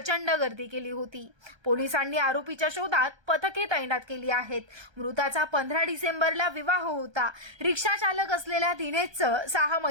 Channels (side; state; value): left; late; 1.3 ms